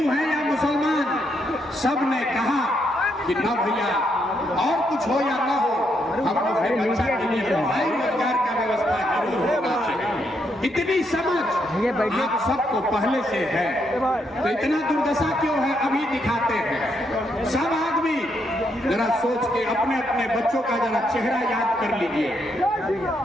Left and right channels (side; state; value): both; normal; correlation 0.77